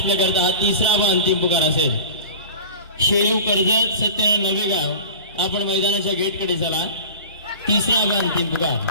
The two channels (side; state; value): both; inverted; correlation -0.36